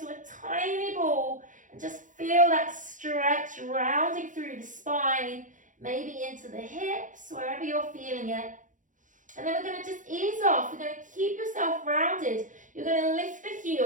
a tiny ball. And just feel that stretch rounding through the spine, maybe into the hips, wherever you're feeling it. And then we're going to just ease off. We're going to keep yourself rounded. You're going to lift the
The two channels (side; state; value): left; late; 0.37 ms